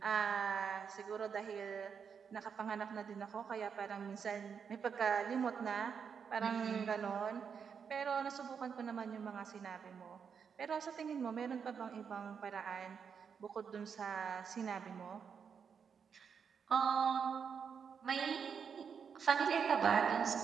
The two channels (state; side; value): quieter; left; 6.7 dB